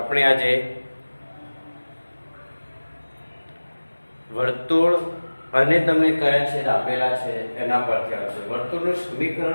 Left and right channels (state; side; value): inverted; both; correlation -1.00